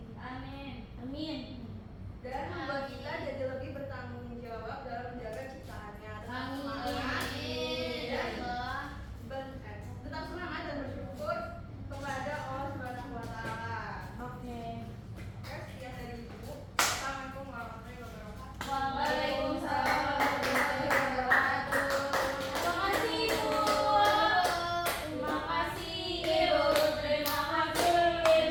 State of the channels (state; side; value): identical; both; correlation 1.00